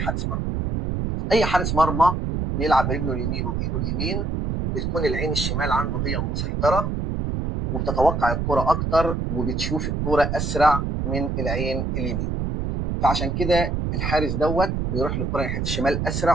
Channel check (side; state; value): right; noise; rumble, 1 dB below the sound